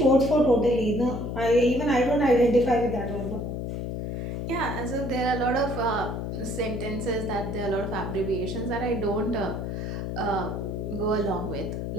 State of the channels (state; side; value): noise; left; hum, 4 dB below the sound